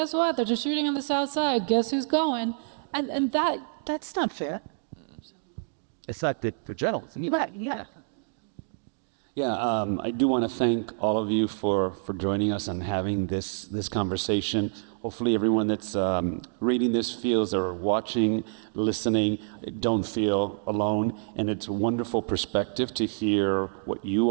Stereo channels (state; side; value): silent; left; digital silence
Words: what? They're just shooting on the South Side. Guess who's going? And that's not fair. It's not the journalism. Yeah. Yeah, I do want to thank all of you for joining us and having this conversation. Hopefully everyone that's reading this feels, or watching, listening, don't feel alone. And it's a wonderful perspective to hear what you